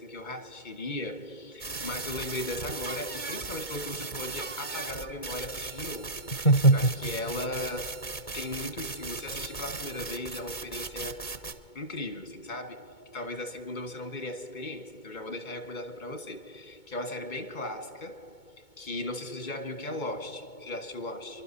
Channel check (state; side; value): late; right; 2.2 ms